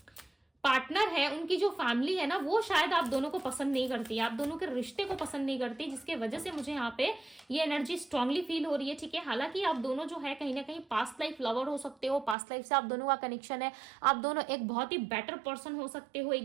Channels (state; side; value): drops out; left; at 12.4 s